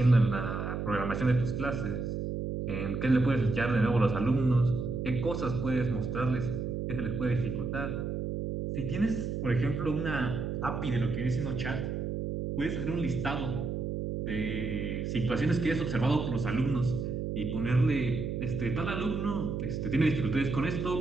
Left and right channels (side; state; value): right; noise; hum, 3 dB below the sound